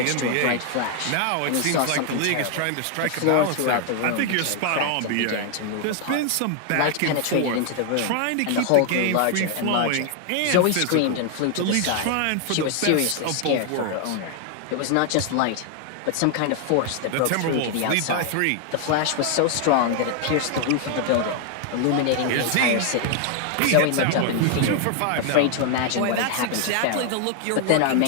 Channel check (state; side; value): different; both; correlation 0.00